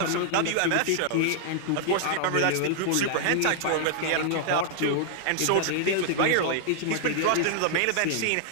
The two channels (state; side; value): different; both; correlation -0.01